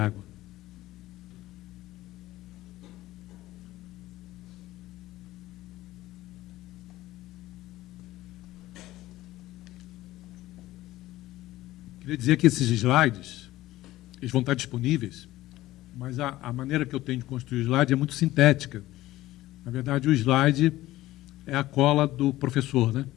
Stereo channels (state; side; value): quieter; right; 16.4 dB